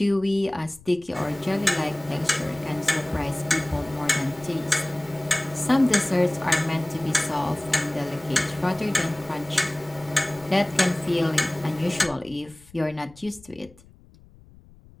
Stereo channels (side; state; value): left; noise; rumble, 24 dB below the sound